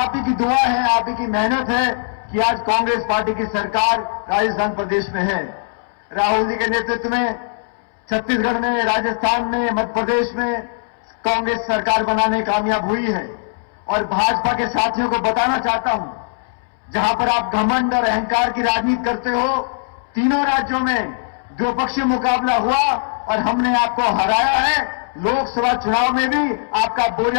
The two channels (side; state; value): right; silent; 66 dB below the other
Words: ही की दुआ है, आप ही की मेहनत है कि आज कांग्रेस पार्टी की सरकार राजस्थान प्रदेश में है। राहुल जी के नेतृत्व में छत्तीसगढ़ में, राजस्थान में, मध्य प्रदेश में कांग्रेस सरकार बनाने कामयाब हुई है। और भाजपा के साथियों को बताना चाहता हूं, जहां पर आप घमंड और अहंकार की राजनीति करते हो, तीनों राज्यों में द्विपक्षीय मुकाबला हुआ और हमने आपको हराया है। लोकसभा चुनाव में भी आपका